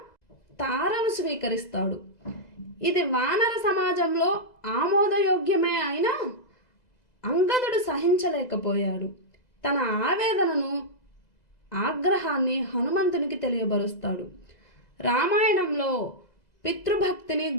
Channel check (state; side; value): late; right; 2.0 ms